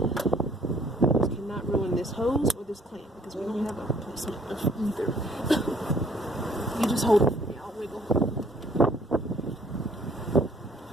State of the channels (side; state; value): both; normal; correlation 0.61